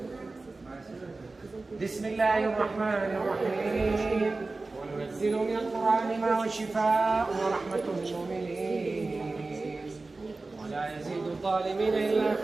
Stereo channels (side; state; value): left; quieter; 3.5 dB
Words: بسم الله الرحمن الرحيم. وننزل من القرآن ما هو شفاء ورحمة للمؤمنين ولا يزيد الظالمين إلا